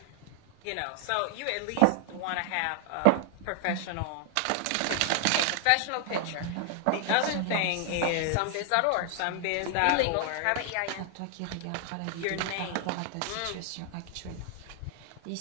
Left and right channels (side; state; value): both; different; correlation 0.00